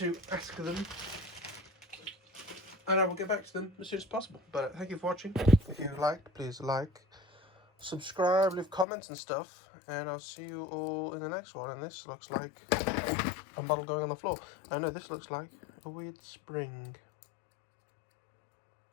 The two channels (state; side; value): drops out; right; at 8.8 s